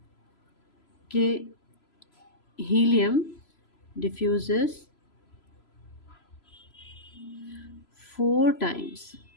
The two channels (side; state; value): right; late; 3.0 ms